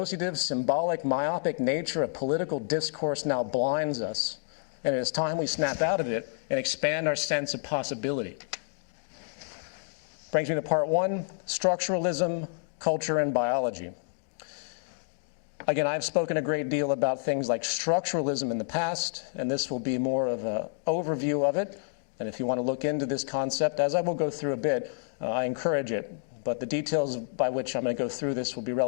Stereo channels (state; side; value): silent; right; digital silence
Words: symbolic, myopic nature of political discourse now blinds us, and it is time we snap out of it and expand our sense of possibility. Brings me to part one, structuralism, culture, and biology. Again, I've spoken a great deal about things like structuralism in the past, and this will be more of an overview of it. And if you want to look into this concept, as I will go through a bit, I encourage it. But the details by which I'm going to go through this will be